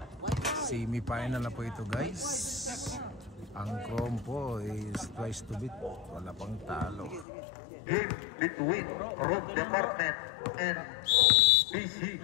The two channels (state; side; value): drops out; right; at 7.2 s